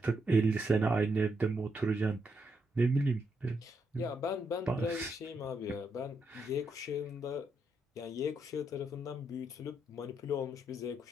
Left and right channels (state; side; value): normal; both; correlation 0.79